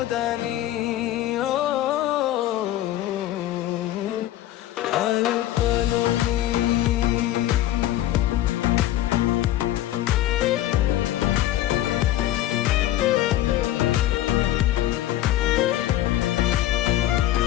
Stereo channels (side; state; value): right; quieter; 13.8 dB